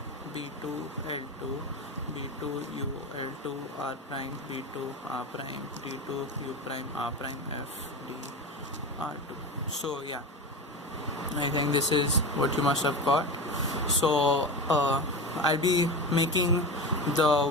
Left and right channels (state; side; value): normal; both; correlation 0.25